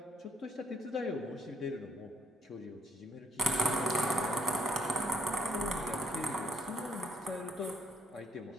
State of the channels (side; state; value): both; normal; correlation 0.71